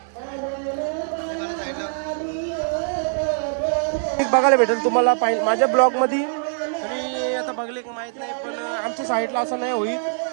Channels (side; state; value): left; silent; digital silence